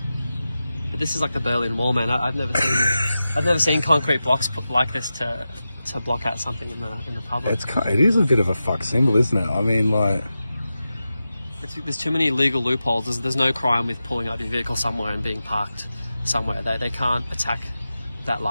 But this is like the Berlin Wall, man. I've never seen concrete blocks put like this to block out something in the public. It is a bit of a fuck symbol, isn't it? I mean, like, there's too many legal loopholes. There's no crime with pulling up your vehicle somewhere and being parked somewhere. They can't attack that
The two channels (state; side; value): inverted; both; correlation -0.92